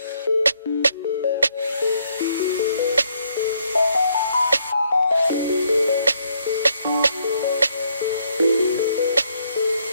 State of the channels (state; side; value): inverted; both; correlation -0.71